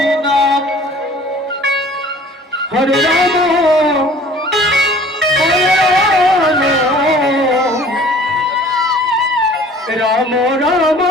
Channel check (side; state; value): both; normal; correlation 0.50